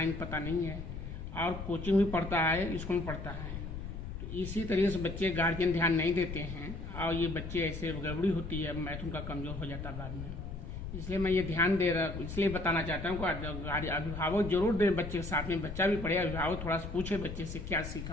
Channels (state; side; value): noise; left; rumble, 7 dB below the sound